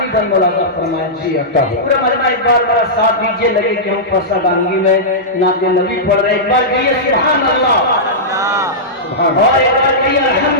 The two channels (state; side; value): normal; both; correlation -0.13